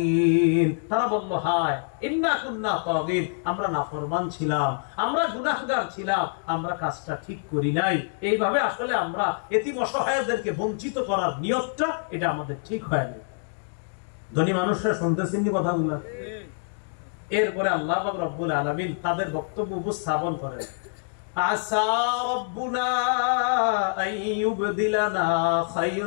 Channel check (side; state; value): right; silent; digital silence